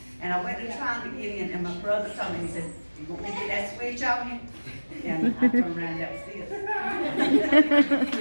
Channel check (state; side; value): inverted; both; correlation -1.00